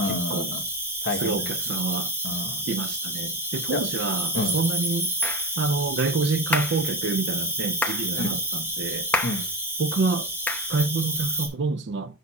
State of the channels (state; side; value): normal; both; correlation 0.24